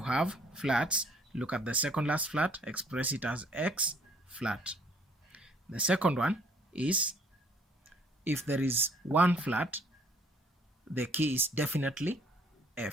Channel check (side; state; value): both; normal; correlation 0.61